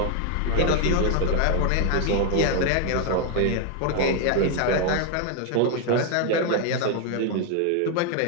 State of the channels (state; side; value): different; both; correlation 0.01